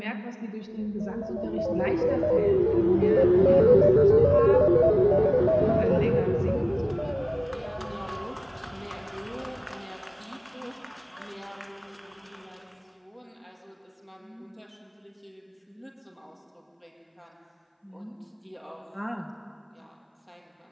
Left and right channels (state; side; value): identical; both; correlation 1.00